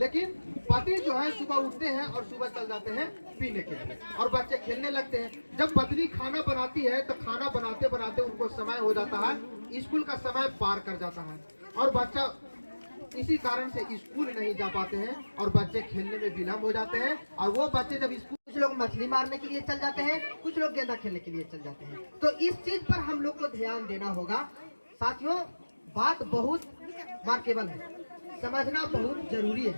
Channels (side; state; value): both; inverted; correlation -1.00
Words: पति जो है सुबह उठते हैं और सुबह चल जाते हैं पीने के लिए और बच्चे खेलने लगते हैं। जब पत्नी खाना बनाती है तो खाना बनाते बनाते उनको समय हो जाता है, स्कूल का समय पार कर जाता है और बच्चा इसी कारण से स्कूल नहीं जा पाते हैं और बच्चे खेलने में विलम्ब हो जाते हैं। और वो बच्चे जब स्कूल, कुछ लोग मछली मारने के लिए चल जाते हैं, कुछ लोग गेंदा खेलने के लिए चल जाते हैं। तो इस चीज पर हम लोग को ध्यान देना होगा। साथियों, बात बहुत मार्केबल है, समझना बहुत जरूरी है।